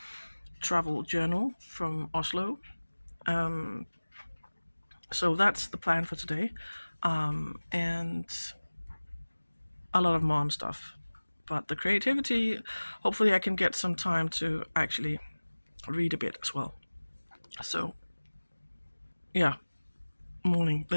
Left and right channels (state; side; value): inverted; both; correlation -1.00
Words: travel journal from Oslo. So that's the plan for today. And a lot of mom stuff. But the creativity, hopefully I can get some time to actually read a bit as well. So yeah, morning.